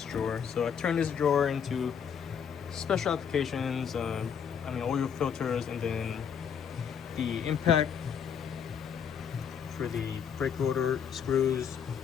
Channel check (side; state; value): right; quieter; 7.5 dB